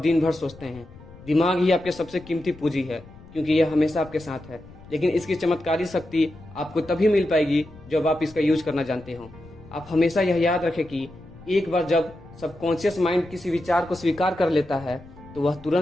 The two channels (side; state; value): left; noise; rumble, 20 dB below the sound